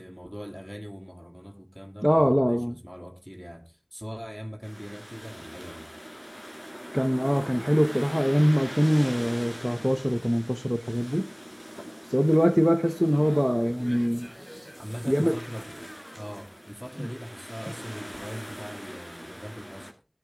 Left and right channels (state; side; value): identical; both; correlation 1.00